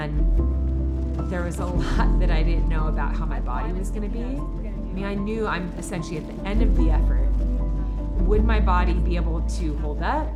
there was a lot that I didn't know about how my body was gonna be. I mean, I knew I'm essentially at the end of the effort. Would my body be able to hold up?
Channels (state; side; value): identical; both; correlation 1.00